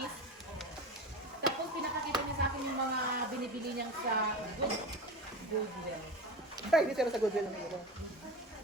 tapos pinakakita niya sa akin yung mga binibili niyang sa Goodwill. Ay, dito na sa Goodwill ng ito.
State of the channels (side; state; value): both; normal; correlation 0.29